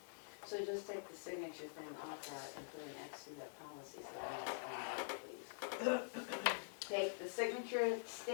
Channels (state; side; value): silent; right; digital silence